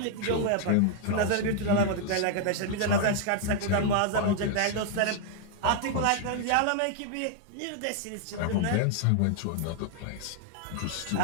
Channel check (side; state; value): both; different; correlation 0.00